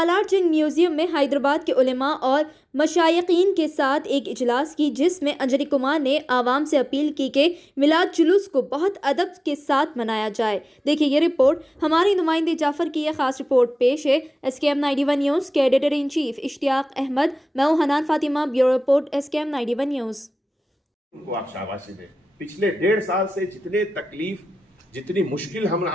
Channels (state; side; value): normal; both; correlation 0.96